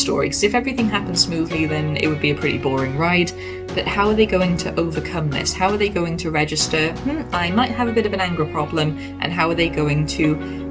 because if everything happens smoothly then it would be a pretty boring ride. But how are they going to overcome this? How are they going to register, I might have a bit of an anger problem, and how are they going to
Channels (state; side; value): identical; both; correlation 1.00